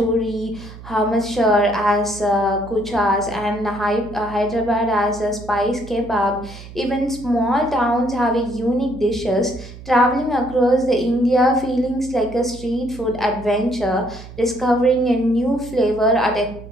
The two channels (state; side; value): noise; right; hum, 16 dB below the sound